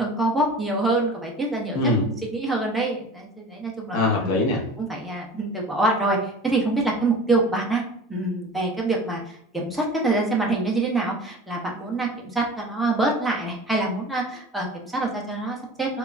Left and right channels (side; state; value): both; normal; correlation 0.39